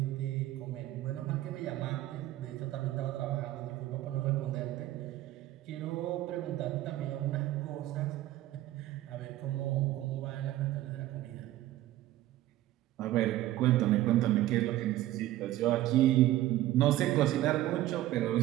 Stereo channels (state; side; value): quieter; left; 14.9 dB